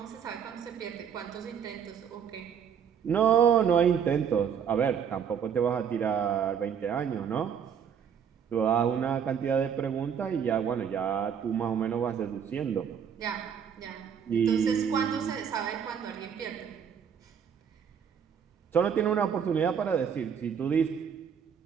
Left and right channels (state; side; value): quieter; left; 7.8 dB